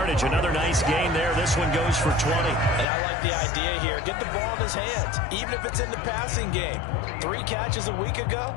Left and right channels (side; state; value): right; drops out; at 2.9 s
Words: Another nice gain there. This one goes for 20. And I like the idea here. Get the ball in his hands, even if it's in the passing game. 3 catches a week ago,